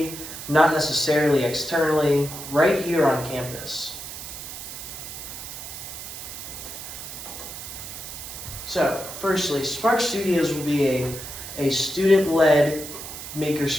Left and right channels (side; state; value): right; noise; hiss, 10 dB below the sound